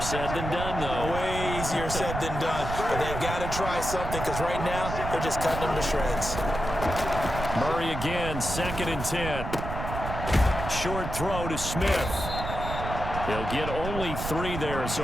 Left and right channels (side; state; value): right; noise; rumble, 5 dB below the sound